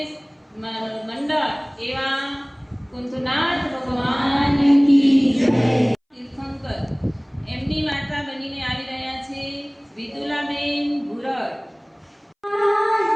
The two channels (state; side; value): identical; both; correlation 1.00